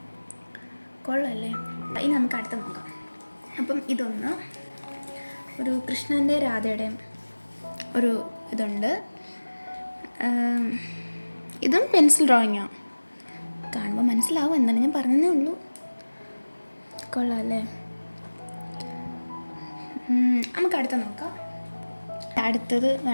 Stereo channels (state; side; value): inverted; both; correlation -1.00